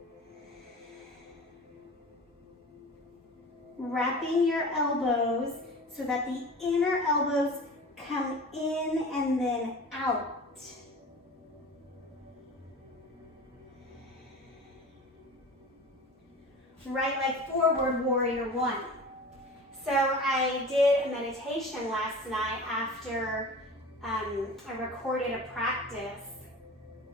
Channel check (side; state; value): both; normal; correlation 0.37